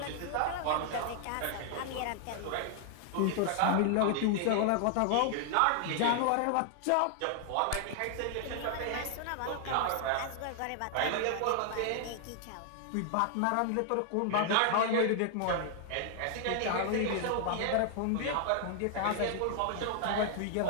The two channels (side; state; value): both; different; correlation 0.00